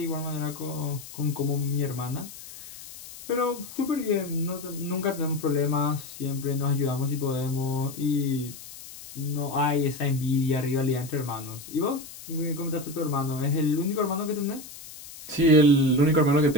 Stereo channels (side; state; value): left; noise; hiss, 15 dB below the sound